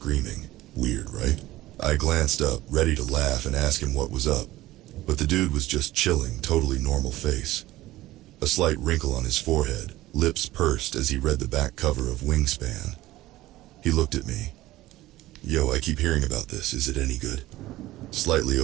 Weird, right? I glanced up, ready to laugh and ask him what was up, but the dude was just chilling, totally normal face. A slight wrinkle on his forehead, lips pursed as he read the back cover of Wingspan. He looked at me. "Yo, I keep hearing about this. Is it any good?" "Slightly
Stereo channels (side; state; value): left; quieter; 16.8 dB